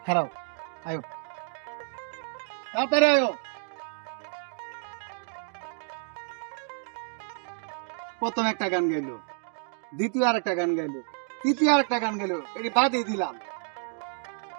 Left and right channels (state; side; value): silent; left; 58 dB below the other